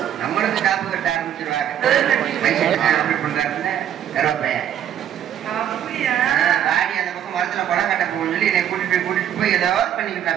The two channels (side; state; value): left; quieter; 10.2 dB